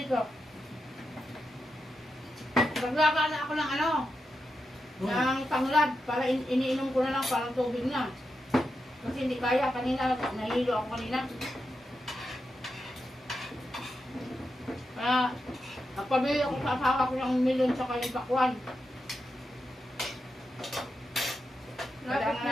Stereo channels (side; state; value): both; normal; correlation 0.87